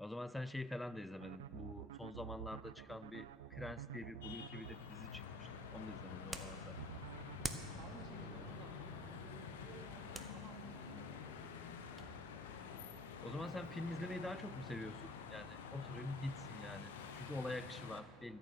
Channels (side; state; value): both; normal; correlation 0.54